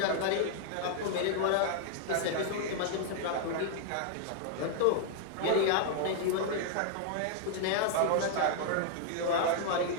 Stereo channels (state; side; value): different; both; correlation 0.00